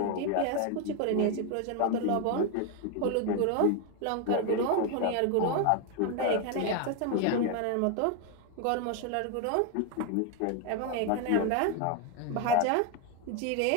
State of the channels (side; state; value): both; different; correlation 0.01